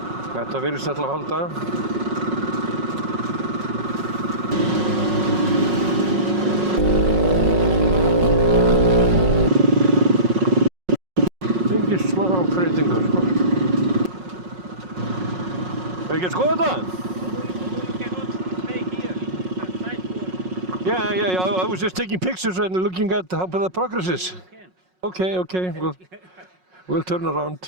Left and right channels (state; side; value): late; left; 5.5 ms